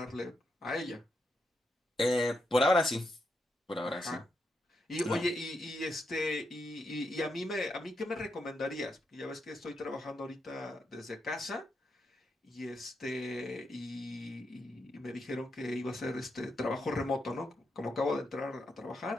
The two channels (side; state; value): both; normal; correlation 0.83